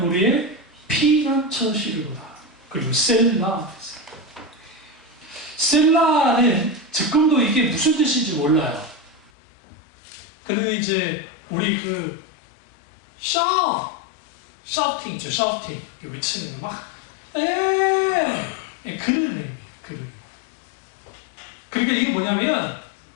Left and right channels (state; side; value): drops out; right; at 9.3 s